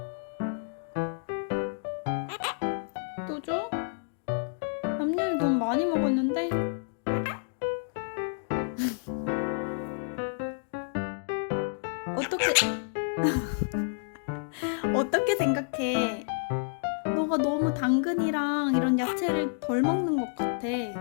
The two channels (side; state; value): right; silent; digital silence